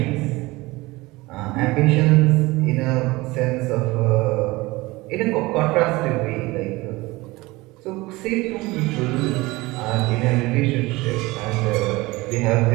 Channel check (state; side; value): quieter; left; 21.3 dB